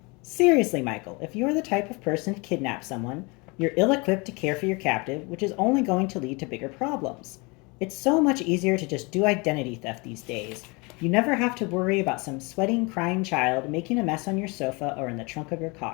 Seriously, Michael, if you are the type of person to kidnap someone, you're ill equipped to care for your captive, which is only going to lead to bigger problems. It's so much easier to just do identity theft these days. You never have to worry about some sweating, crying child making a mess on your sofa or in the trunk of your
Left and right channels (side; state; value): right; quieter; 28.1 dB